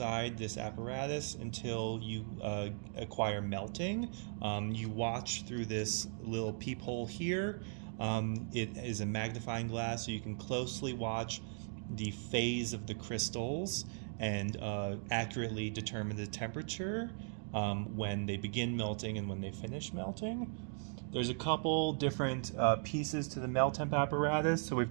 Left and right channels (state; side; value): silent; left; 52 dB below the other